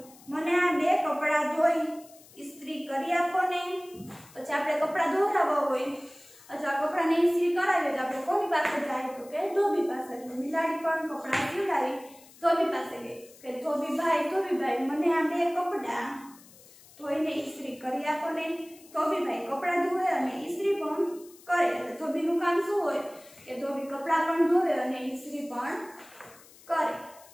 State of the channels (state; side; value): noise; left; hiss, 23 dB below the sound